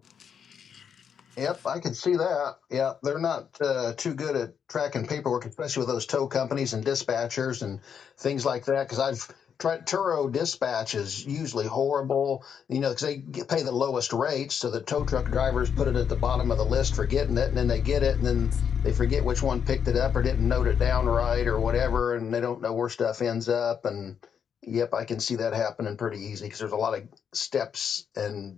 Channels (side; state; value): right; quieter; 7.5 dB